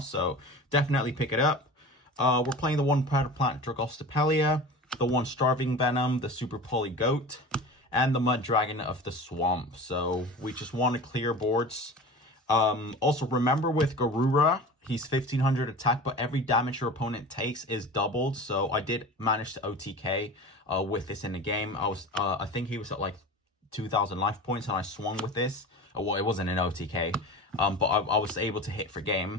definitely pick it up. We're playing the 1 Predator Plant Dragostopelia, the 1 Starving Venom, the Super Poly Goat, and the Mud Dragon of the Swamp. So we just want to clear boards. Also, remember with Garura, he's 1500 attack, but every damage your opponent takes is doubled. So I did manage to OTK with this in the game. I think he was at like 2000 life points, and I swung with this. Well, it wasn't an OTK, but I was able to hit for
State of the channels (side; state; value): both; normal; correlation 0.34